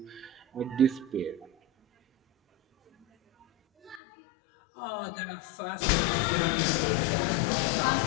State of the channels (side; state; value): right; drops out; at 4.0 s